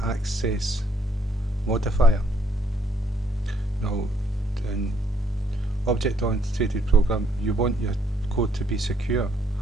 access modifier. Now, in object-oriented program, you want your code to be secure.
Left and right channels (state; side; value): normal; both; correlation 0.69